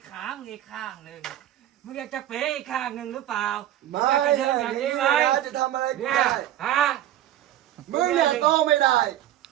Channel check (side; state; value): left; quieter; 12.6 dB